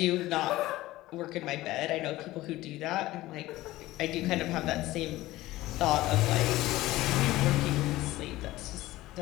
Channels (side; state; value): right; quieter; 17.2 dB